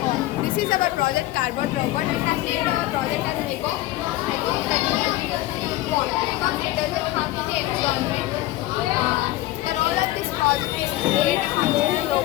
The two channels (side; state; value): right; quieter; 16.6 dB